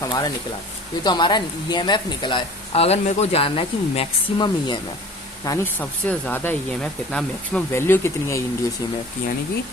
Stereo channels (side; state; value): both; normal; correlation 0.44